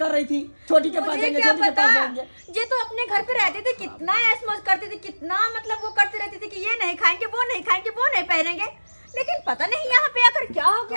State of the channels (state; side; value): inverted; both; correlation -1.00